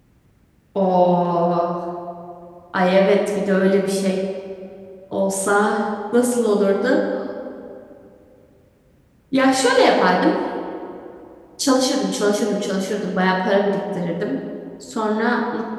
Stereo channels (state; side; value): identical; both; correlation 1.00